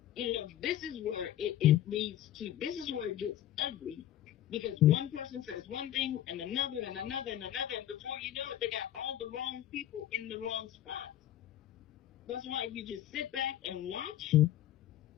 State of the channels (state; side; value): quieter; right; 12.1 dB